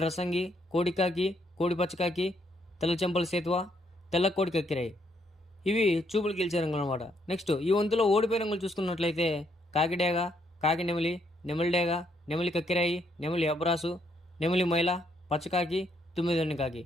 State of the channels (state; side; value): normal; both; correlation 0.73